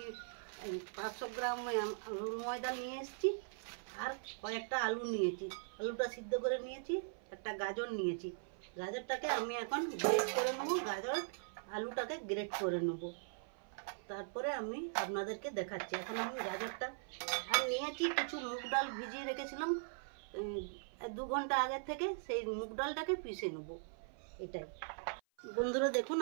500 গ্রাম আলুর ময়দা নিয়ে এসেছি, আর কয়েকটা আলু নিয়েছি। আলুটা সিদ্ধ করে নিয়েছি। একটা গাজর নিয়েছি। গাজরটাকে আমি এখন গ্রেট করে নেব। আলুটাকে গ্রেট করে নেব, তারপরে আমি আপনাদেরকে দেখাচ্ছি। এখন আমি গাজরটা আর নিয়েছি কিছু মুগ ডাল ভিজিয়ে রেখেছিলাম 2 ঘন্টা আগের থেকে, সেই মুগ ডালটাকে পিষে নেব। এটাই বন্ধুরা, দেখুন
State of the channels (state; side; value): silent; left; 51 dB below the other